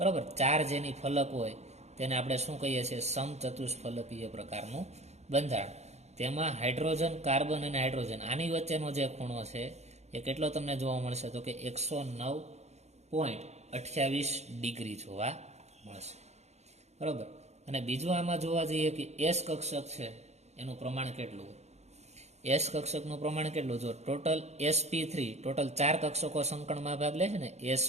4 જેની ફલક હોય તેને આપણે શું કહીએ છીએ? સમચતુષ્ફલકીય પ્રકારનું બંધારણ. તેમાં હાઇડ્રોજન, કાર્બન અને હાઇડ્રોજન આની વચ્ચેનો જે ખૂણો છે એ કેટલો તમને જોવા મળશે? તો કે 109.28 ડિગ્રી જોવા મળશે, બરાબર. અને બીજું આમાં જોવા જઈએ કે S કક્ષક છે એનું પ્રમાણ કેટલું હોય? S કક્ષકનું પ્રમાણ કેટલું? જો ટોટલ sp3, ટોટલ 4 કક્ષકો સંકરણમાં ભાગ લે છે ને,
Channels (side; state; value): left; late; 0.32 ms